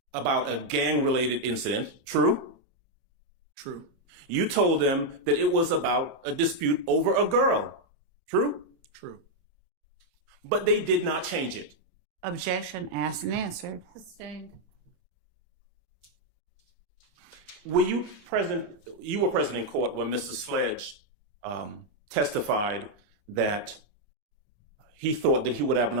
about a gang-related incident. True? True. You told them that it was about a dispute over a girl. True? True. But they did not change it. Objection asked and answered. Sustained. Were you present? You were present in court when Mr. Sledge testified that he thought that he would have an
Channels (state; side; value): late; left; 28 ms